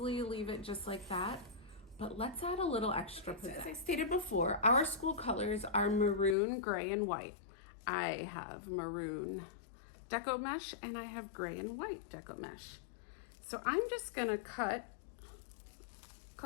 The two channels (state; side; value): drops out; right; at 6.4 s